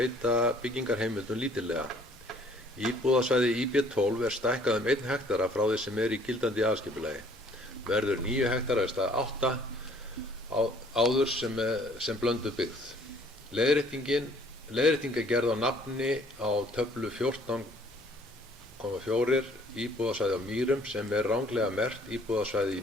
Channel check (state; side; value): normal; both; correlation 0.58